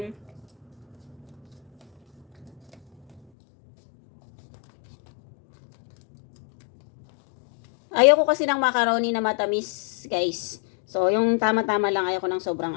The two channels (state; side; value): drops out; right; at 3.2 s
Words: Ayoko kasi ng macaroni na matamis, guys. So, yung tama-tama lang, ayoko ng sobrang